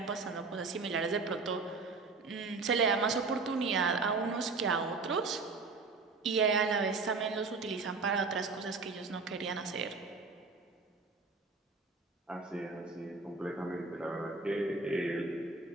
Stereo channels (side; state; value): left; quieter; 4.1 dB